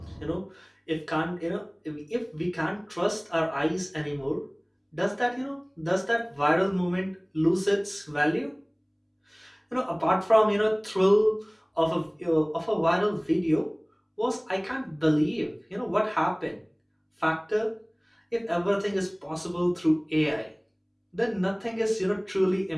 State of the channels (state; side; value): identical; both; correlation 1.00